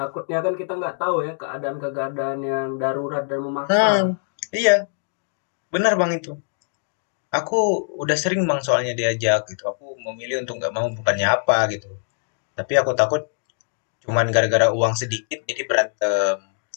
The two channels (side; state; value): right; silent; digital silence